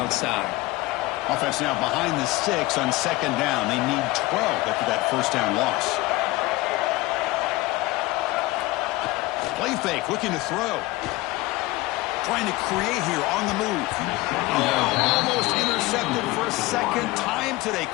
Offense now behind the 6 on 2nd down. They need 12 after that 1st down loss. Play fake, looking to throw. Trying to create here on the move. Oh, almost intercepted for a 2nd time today.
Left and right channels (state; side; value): quieter; right; 19.9 dB